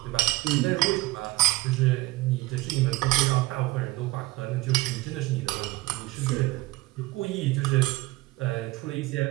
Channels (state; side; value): quieter; left; 19.3 dB